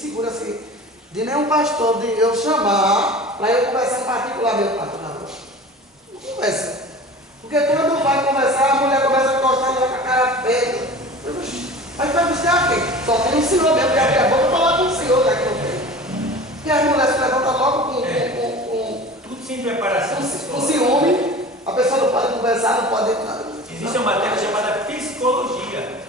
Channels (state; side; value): normal; both; correlation 0.38